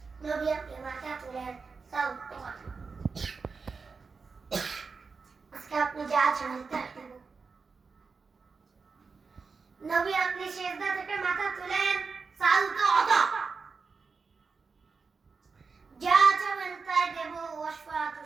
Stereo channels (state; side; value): quieter; left; 4.8 dB